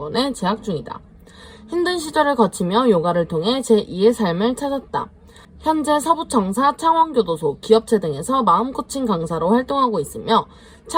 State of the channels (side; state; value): both; identical; correlation 1.00